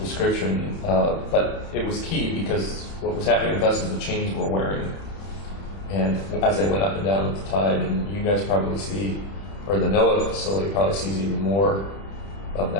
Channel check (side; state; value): right; late; 31 ms